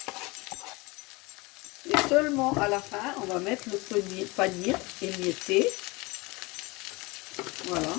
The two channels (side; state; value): right; quieter; 24.7 dB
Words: Et seulement à la fin, on va mettre le panir émietté. Voilà.